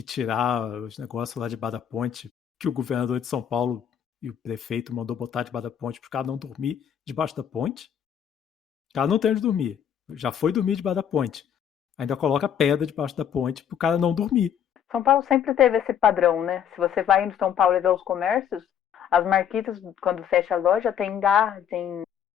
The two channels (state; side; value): quieter; right; 8.9 dB